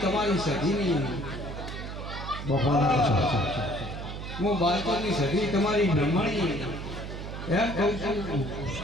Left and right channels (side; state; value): right; noise; hum, 8 dB below the sound